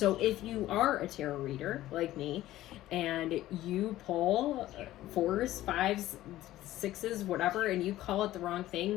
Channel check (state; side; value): quieter; right; 15.0 dB